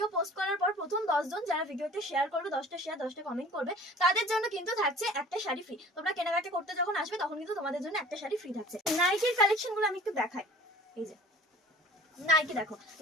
পোস্ট করার পর প্রথম 10 জন যারা ভিডিওতে শেয়ার করবে, 10টা শেয়ার 10টা কমেন্ট করবে, তাদের জন্য কিন্তু থাকছে একটা শাড়ি ফ্রি। তোমরা কেনাকাটা করতে যখন আসবে তখন কিন্তু তোমাদের জন্য একটা শাড়ি ফ্রি থাকছে। নাইটির কালেকশনগুলো আমি একটু দেখাই। এই যে নাইটি দেখো,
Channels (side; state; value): both; normal; correlation 0.46